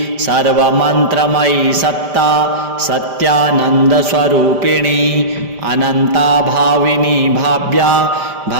सर्वमन्त्रमयी सत्ता सत्यानन्दस्वरूपिणी अनन्ता भाविनी भाव्या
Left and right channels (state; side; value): late; left; 5.1 ms